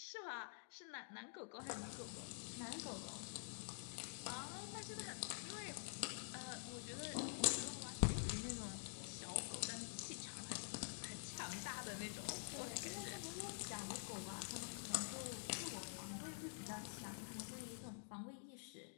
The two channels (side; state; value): right; silent; digital silence